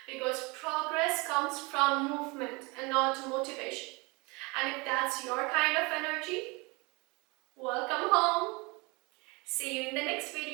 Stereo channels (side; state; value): left; quieter; 27.0 dB